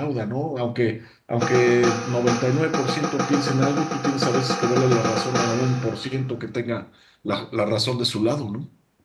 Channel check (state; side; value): identical; both; correlation 1.00